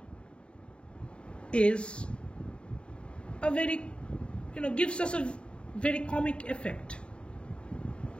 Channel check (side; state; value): right; late; 0.055 ms